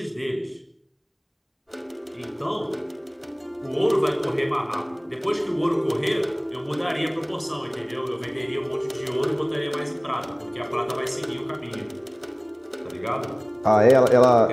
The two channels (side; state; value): both; identical; correlation 1.00